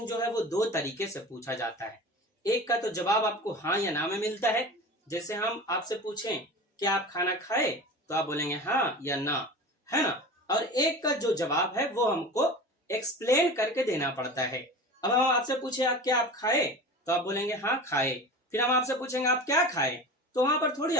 जो है वो 2 तरीके से पूछा जाता है। एक का तो जवाब आपको हाँ या ना में मिलता है, जैसे हम आपसे पूछें कि आप खाना खाए, तो आप बोलेंगे हाँ या ना, है ना। और एक का जो जवाब है वो हमको एक्सप्लेन करके देना पड़ता है। अब हम आपसे पूछे आप क्या आप खाए, तो आप बोलेंगे हाँ खाए। फिर हम आपसे पूछेंगे आप क्या खाए, तो वहां पर थोड़ी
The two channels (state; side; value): normal; both; correlation 0.33